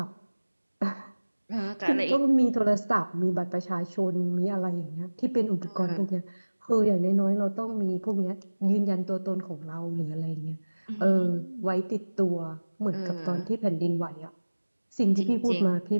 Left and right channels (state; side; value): inverted; both; correlation -1.00